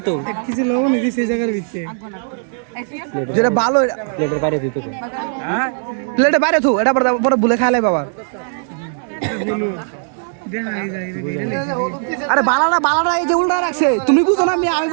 তো কিছু লবণ দিছি সেই জায়গার ভিতরে যেটা ভালো প্লেটের বাইরে দিতে তো হ্যাঁ প্লেটে বাইরে থু এটা পরে ভুলে খাইলে বাবা আরে বালাটা এই যে উল্টা রাখছে তুমি বুঝো না আমি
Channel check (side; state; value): left; silent; digital silence